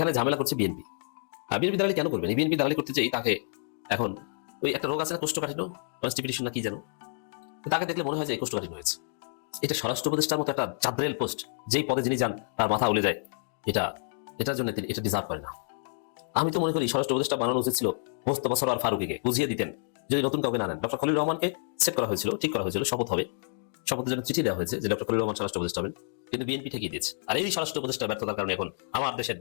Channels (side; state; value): right; silent; digital silence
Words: ঝামেলা করছে বিএনপি। বিএনপি দালালি কেন করবেন? বিএনপি দালালি করতে চাই তাকে এখন ওই একটা রোগ আছে না, কোষ্ঠকাঠিন্য, কনস্টিপিটেশন না কি যেন, তাকে দেখলে মনে হয় যে কোষ্ঠকাঠিন্য হয়েছে। এটা স্বরাষ্ট্র উপদেষ্টার মতো একটা চাঁদরেল পোস্ট, যেই পদে যিনি যান তার মাথা উলে যায়, এটার জন্য তিনি এটা ডিজার্ভ করে না। আমি তো মনে করি স্বরাষ্ট্র উপদেষ্টা বানানো উচিত ছিল মোস্তফা সরোয়ার ফারুকীকে, বুঝিয়ে দিতেন যদি নতুন কাউকে না নেন। ডক্টর খলিলুর রহমানকে সেট করা হয়েছিল, ঠিক করা হয়েছিল, শপথ হবে, শপথের জন্য চিঠি দেওয়া হয়েছে যে ডক্টর খলিলুর রহমান স্বরাষ্ট্র উপদেষ্টা হবেন, কিন্তু বিএনপি ঠেকিয়ে দিয়েছে। আর এই স্বরাষ্ট্র উপদেষ্টা ব্যর্থতার কারণে এখন আমার দেশের